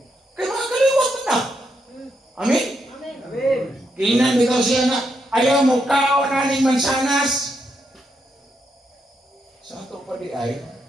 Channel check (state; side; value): normal; both; correlation 0.80